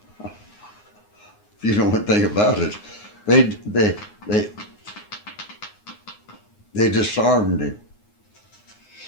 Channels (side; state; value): right; late; 9.6 ms